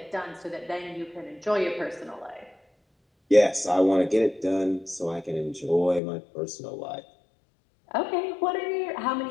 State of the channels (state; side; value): drops out; right; at 6.0 s